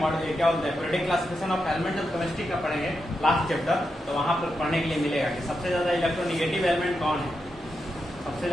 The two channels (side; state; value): both; normal; correlation 0.86